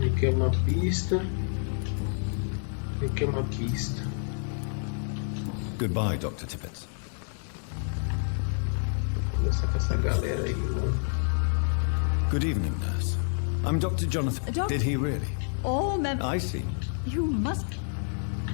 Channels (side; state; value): right; silent; 59 dB below the other